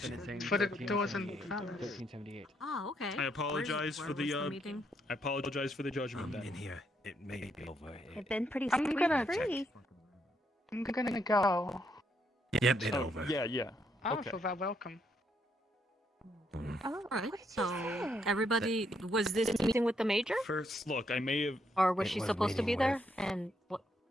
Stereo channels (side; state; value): both; normal; correlation 0.75